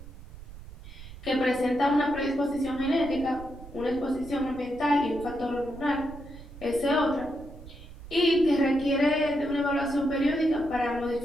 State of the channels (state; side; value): noise; right; rumble, 16 dB below the sound